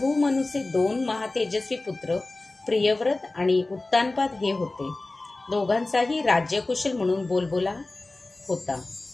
मनूचे 2 महातेजस्वी पुत्र प्रियव्रत आणि उत्तानपाद हे होते। दोघांचाही राज्यकुशल म्हणून बोलबोला होता।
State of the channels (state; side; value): quieter; right; 3.1 dB